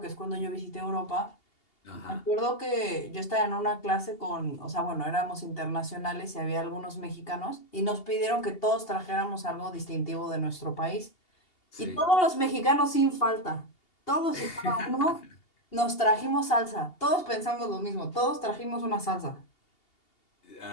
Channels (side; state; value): right; late; 2.8 ms